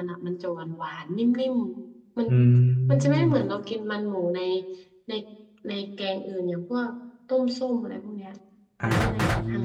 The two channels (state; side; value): identical; both; correlation 1.00